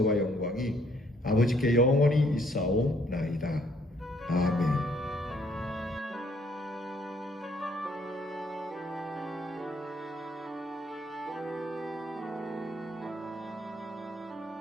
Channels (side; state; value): both; normal; correlation 0.66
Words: 영광이 아버지께 영원히 있사오나이다. 아멘.